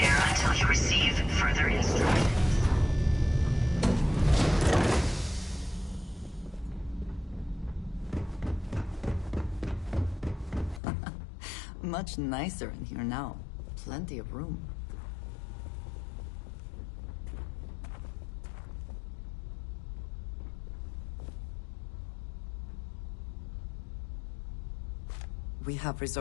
until you receive further instructions. Much nicer in here now. Plenty of room. We have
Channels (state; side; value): drops out; right; at 10.8 s